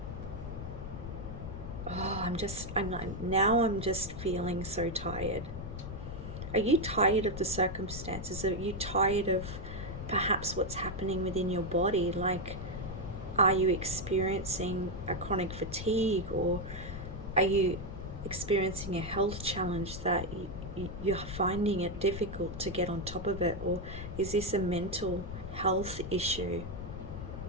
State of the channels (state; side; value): noise; left; rumble, 8 dB below the sound